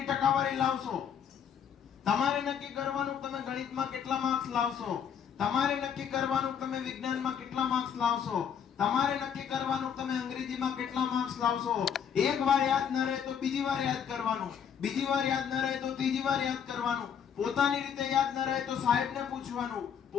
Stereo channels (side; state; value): right; quieter; 7.9 dB